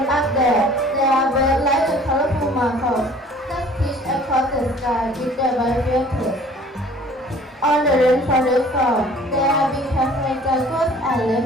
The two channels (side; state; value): both; normal; correlation 0.51